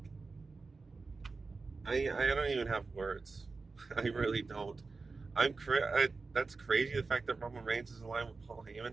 I don't even have words. I really don't. That's crazy. The fact that Roman Reigns is aligned with Paul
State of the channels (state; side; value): quieter; left; 4.1 dB